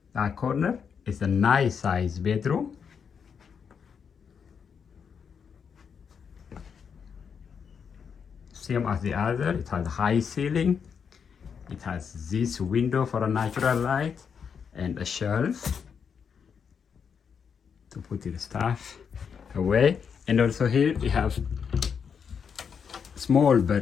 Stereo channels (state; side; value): quieter; right; 6.7 dB